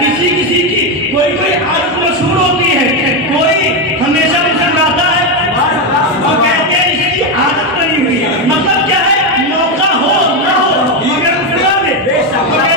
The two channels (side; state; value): both; normal; correlation 0.08